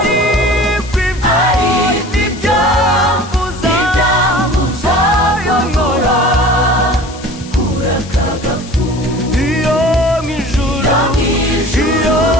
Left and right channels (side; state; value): left; noise; hiss, 18 dB below the sound